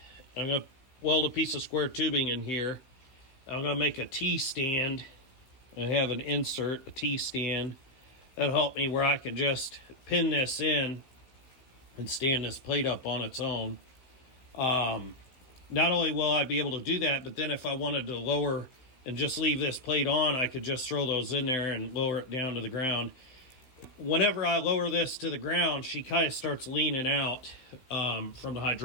I'm going to weld a piece of square tubing in here. I'm going to make a T-stand. I have an insert, a T-stand. That'll help me where I can just pin this in and stand this plate up on its own. Not only will I be able to do that, but then if I wanted to lower and just leave this plate on, I could just throw those in there and lower it down to the ground. whenever I lower this to the ground, she kind of starts leaning out from the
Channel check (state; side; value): late; right; 16 ms